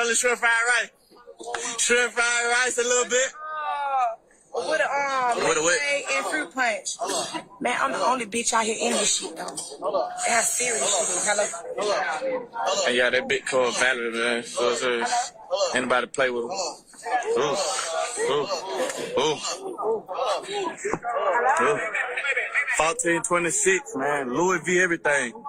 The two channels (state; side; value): identical; both; correlation 1.00